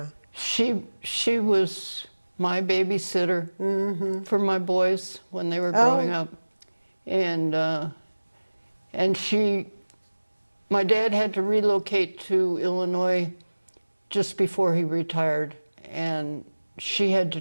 She was my babysitter for my boys when they were growing up. And my dad had to relocate to Illinois just before he retired, and she had to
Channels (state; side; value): inverted; both; correlation -1.00